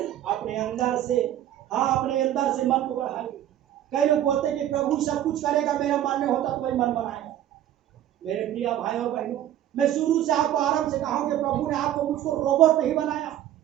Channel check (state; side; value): quieter; left; 12.0 dB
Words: अपने अंदर से, हाँ अपने अंदर से मन को बढ़ाइए। कई लोग बोलते हैं कि प्रभु सब कुछ करेगा, मेरा मन नहीं होता तो वही मन बनाएगा। मेरे प्रिय भाई और बहनों, मैं शुरू से आपको आरंभ से कहा हूं कि प्रभु ने आपको मुझको रोबोट नहीं बनाया